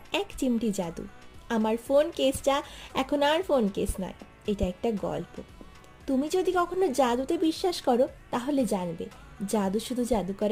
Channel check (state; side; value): identical; both; correlation 1.00